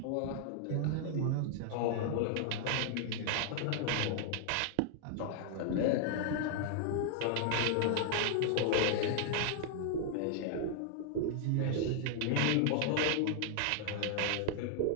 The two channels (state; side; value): different; both; correlation 0.00